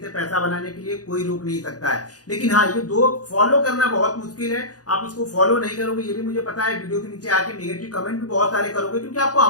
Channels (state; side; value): late; right; 0.68 ms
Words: से पैसा बनाने के लिए कोई रोक नहीं सकता है। लेकिन हाँ, ये दो फॉलो करना बहुत मुश्किल है। आप इसको फॉलो नहीं करोगे ये भी मुझे पता है। वीडियो के नीचे आके नेगेटिव कमेंट भी बहुत सारे करोगे क्योंकि आपको